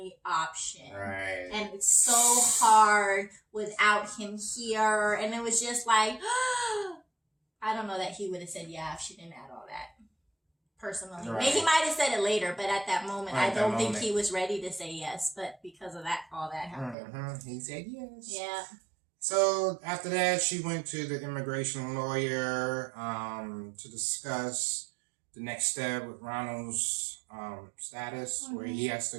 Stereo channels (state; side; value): drops out; left; at 16.9 s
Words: option. Right. And it's so hard without him here. And it was just like, I don't know that he would have said yeah if she didn't add all that. Personally. Right. Maybe he might have said it later, but at that moment, I don't think he was ready to say yes. But because of that, all that happened. He said yes. Yeah. So after that, she went to the immigration lawyer to discuss the next step with Ronald's status, where he has